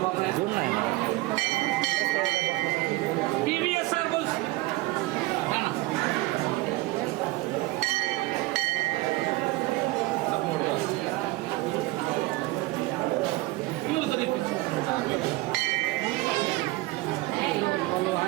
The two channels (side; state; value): left; quieter; 20.4 dB